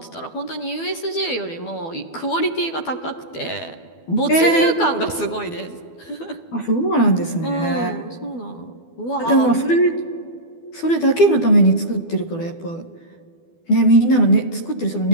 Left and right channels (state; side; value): late; right; 12 ms